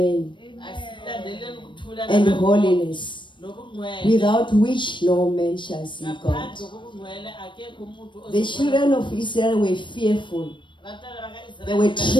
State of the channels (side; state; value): right; late; 0.23 ms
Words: asilandeleni ukuthula and nabantu holiness, nobungcwele. without which no man shall see God. Ngaphandle kobungcwele akekho umuntu The ozobona. children of Israel were fearful. Abantwana baka-Israyeli They were